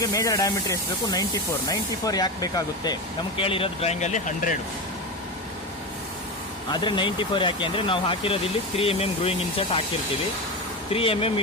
ಮೇಜರ್ ಡಯಾಮೀಟ್ರ್ ಎಷ್ಟು ಬೇಕು? 94 ಯಾಕೆ ಬೇಕಾಗುತ್ತೆ? ನಮ್ಗೆ ಕೇಳಿರೋದು ಡ್ರಾಯಿಂಗಲ್ಲಿ 100, ಆದರೆ 94 ಯಾಕೆ ಅಂದರೆ ನಾವು ಹಾಕಿರೋದು ಇಲ್ಲಿ 3 mm ಗ್ರೂಯಿಂಗ್ ಇನ್ಸರ್ಟ್ ಹಾಕಿರ್ತೀವಿ. 3 mm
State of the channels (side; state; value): both; normal; correlation 0.19